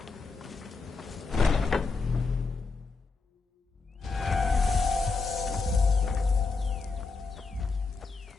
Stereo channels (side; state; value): right; quieter; 4.3 dB